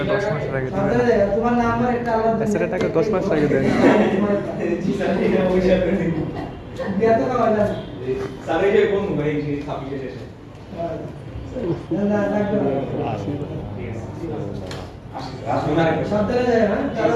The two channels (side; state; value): both; identical; correlation 1.00